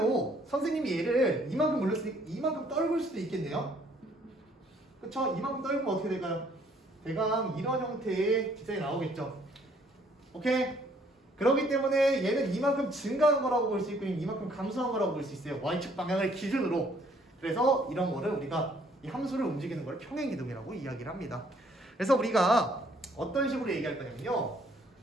선생님이 얘를 이만큼 올렸으니까 이만큼 떨굴 수도 있겠네요. 그쵸? 이만큼 떨구면 어떻게 될까요? 대강 이런 형태의 기장이 나오겠죠. 오케이? 그렇기 때문에 얘는 이만큼 증가한 거라고 볼 수 있고 이만큼 감소한 거라고 볼 수 있어요. y축 방향을 기준으로. 그래서 이런 거를 우리가 이 함수를 움직이는 걸 평행이동이라고 이야기를 합니다. 그래서 우리가 어떤 식으로 얘기할 거냐면요.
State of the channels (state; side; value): normal; both; correlation 0.63